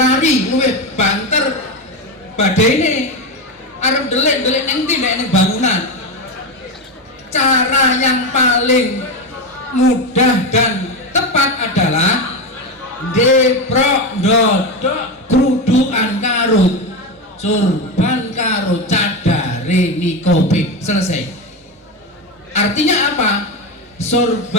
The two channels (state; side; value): normal; both; correlation 0.15